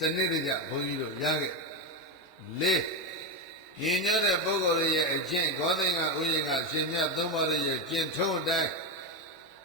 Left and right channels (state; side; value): normal; both; correlation 0.11